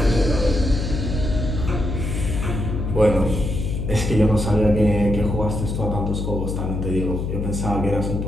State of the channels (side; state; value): left; noise; hum, 3 dB below the sound